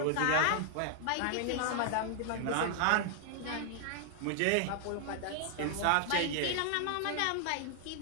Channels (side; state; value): both; different; correlation 0.00